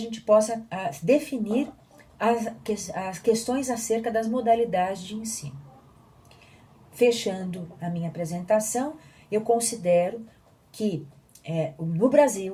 possa definir as questões acerca das modalidades de ensino. Fechando a minha apresentação, eu considero que no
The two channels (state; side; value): identical; both; correlation 1.00